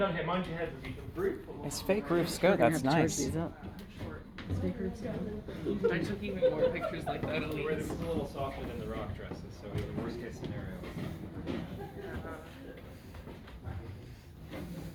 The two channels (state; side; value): identical; both; correlation 1.00